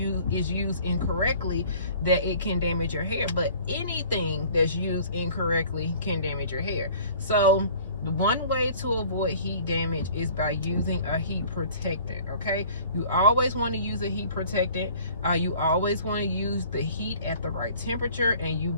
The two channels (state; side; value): inverted; both; correlation -0.50